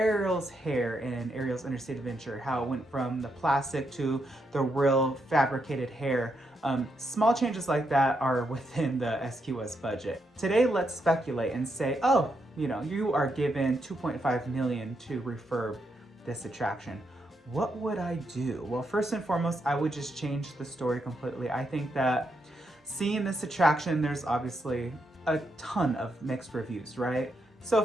hair in Ariel's Interstate Adventure, how it went from the plastic to the real fabricated hair. Small changes like that are within the SQS budget. Today, let's speculate and say, oh, you are given $2.5 million to refurb this attraction. What would I do? Well, first and foremost, I would just change the story completely. I think that seeing this attraction, there's obviously a ton of mixed reviews, right? So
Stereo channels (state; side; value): normal; both; correlation 0.81